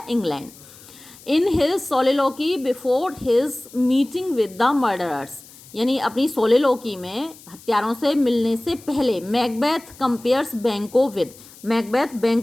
England. In his soliloquy before his meeting with the murderers, यानी अपनी सोलिलोकी में हत्यारों से मिलने से पहले Macbeth compares Banquo with, Macbeth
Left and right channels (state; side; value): noise; left; hiss, 22 dB below the sound